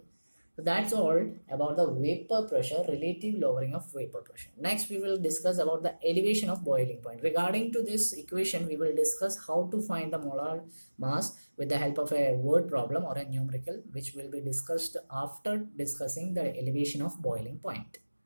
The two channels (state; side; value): inverted; both; correlation -1.00